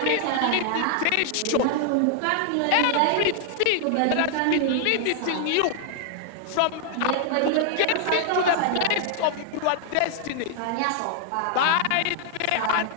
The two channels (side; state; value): both; different; correlation 0.00